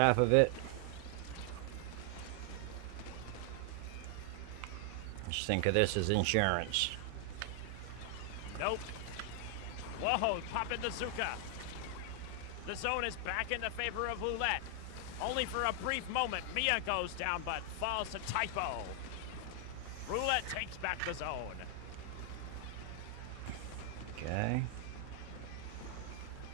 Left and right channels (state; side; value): different; both; correlation 0.00